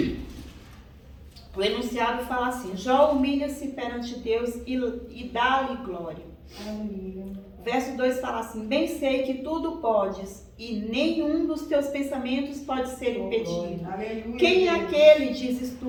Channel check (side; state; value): both; identical; correlation 1.00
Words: O enunciado fala assim: Jó humilha-se perante Deus e dá-lhe glória. Aleluia. Verso 2 fala assim: bem sei que tudo podes e nenhum dos teus pensamentos pode ser impedido. Aleluia. Quem é aquele, dizes